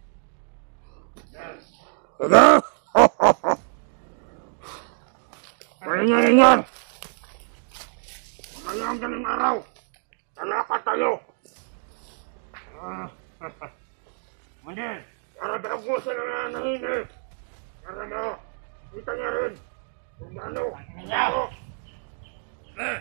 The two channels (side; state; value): left; silent; 60 dB below the other